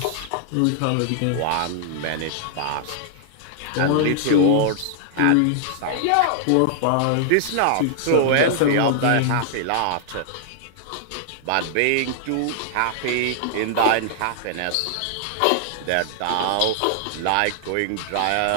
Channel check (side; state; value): both; different; correlation -0.01